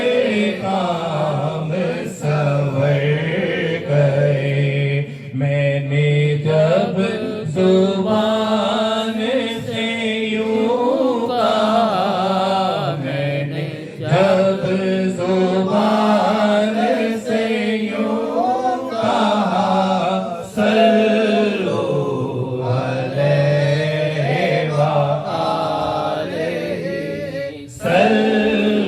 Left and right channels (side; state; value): both; identical; correlation 1.00